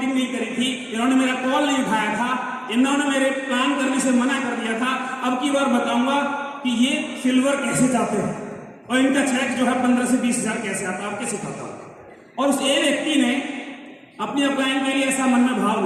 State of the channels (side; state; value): both; identical; correlation 1.00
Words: नहीं करी थी, इन्होंने मेरा कॉल नहीं उठाया था, इन्होंने मेरे प्लान करने से मना कर दिया था। अब की बार बताऊंगा कि ये सिल्वर कैसे जाते हैं और इनका चेक जो है 15 से 20 हजार कैसे आता है, आपके सिखाता हूं। और उस ए व्यक्ति ने अपनी अपलाइन के लिए ऐसा मन में भाव